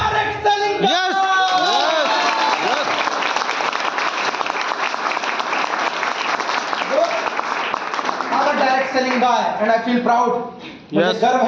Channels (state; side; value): identical; both; correlation 1.00